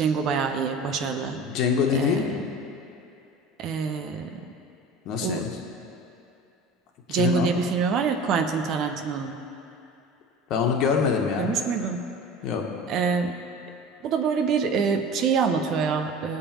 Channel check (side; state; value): both; normal; correlation 0.37